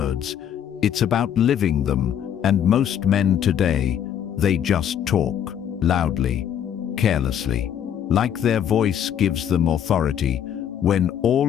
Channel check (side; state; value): right; quieter; 9.3 dB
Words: it's about living them, and most men today, they just talk, loudly, carelessly, like their voice gives them authority, when